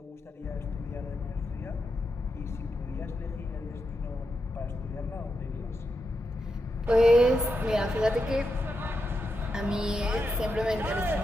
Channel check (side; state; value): both; normal; correlation 0.86